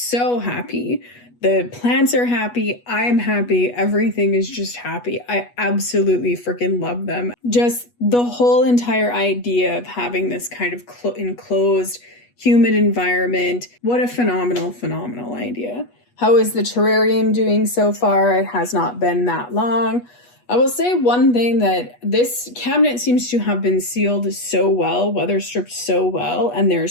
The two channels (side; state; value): right; late; 8.3 ms